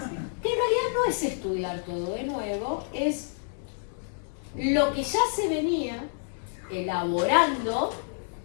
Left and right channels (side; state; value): right; silent; 59 dB below the other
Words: Que en realidad no es estudiar todo de nuevo, es lo que ya se venía elaborando